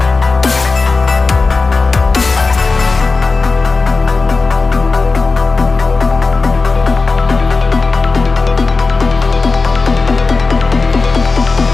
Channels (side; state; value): right; quieter; 4.0 dB